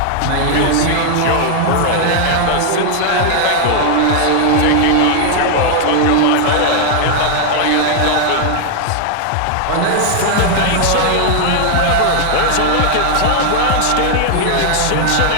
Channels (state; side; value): different; both; correlation 0.00